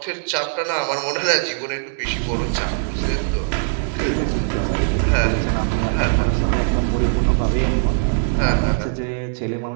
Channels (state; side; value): silent; left; digital silence